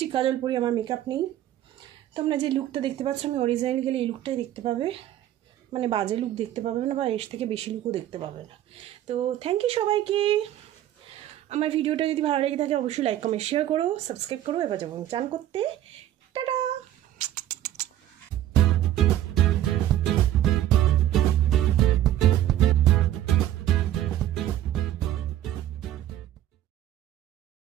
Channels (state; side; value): quieter; left; 12.5 dB